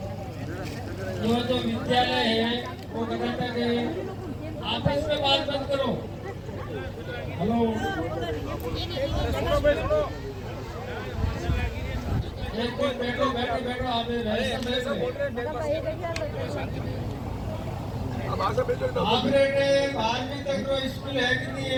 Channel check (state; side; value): identical; both; correlation 1.00